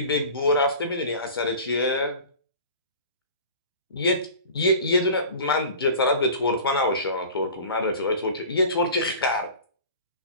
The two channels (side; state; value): both; inverted; correlation -0.40